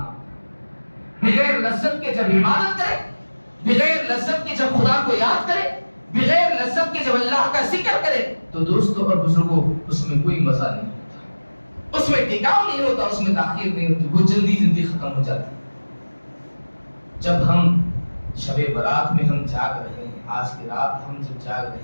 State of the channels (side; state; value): both; inverted; correlation -1.00